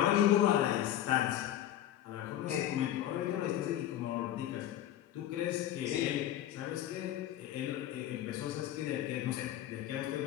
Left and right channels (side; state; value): right; quieter; 12.1 dB